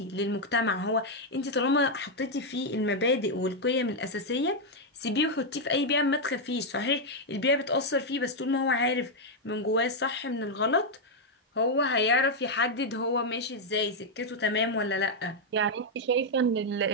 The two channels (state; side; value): normal; both; correlation 0.00